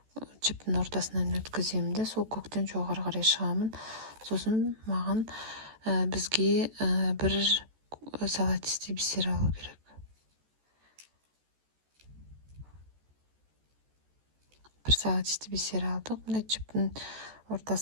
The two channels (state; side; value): late; left; 14 ms